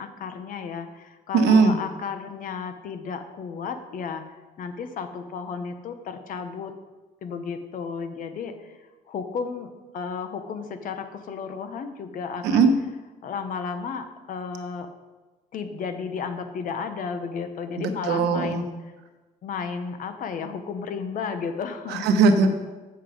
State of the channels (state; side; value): normal; both; correlation 0.50